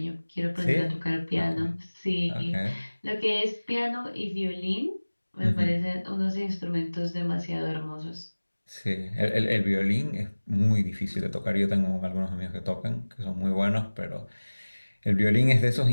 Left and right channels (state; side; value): inverted; both; correlation -1.00